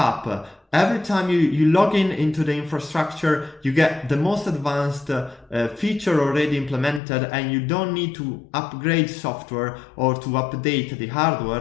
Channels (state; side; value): drops out; right; at 7.0 s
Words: Every time you log in into the infrastructure, you get the most advanced feature already implemented, and you don't need to upgrade software or to update the